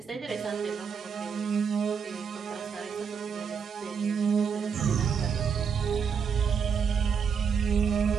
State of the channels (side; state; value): left; quieter; 6.5 dB